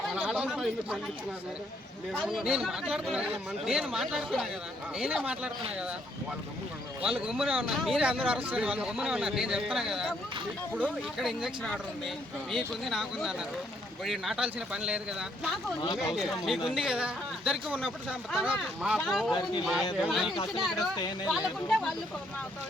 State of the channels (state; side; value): normal; both; correlation 0.70